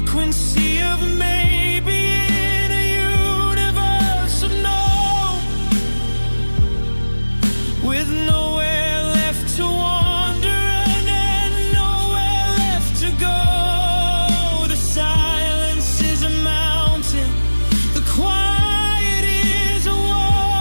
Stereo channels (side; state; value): both; inverted; correlation -1.00